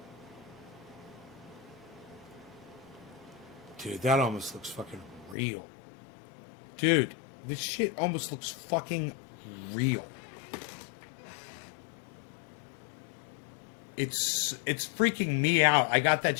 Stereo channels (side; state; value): right; drops out; at 5.4 s